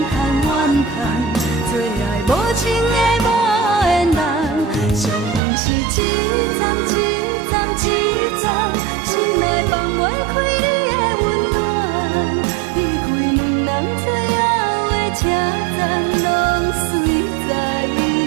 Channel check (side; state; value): left; drops out; at 5.4 s